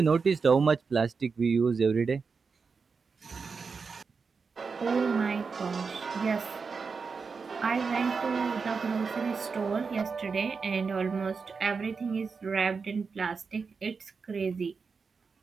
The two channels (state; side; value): quieter; left; 5.1 dB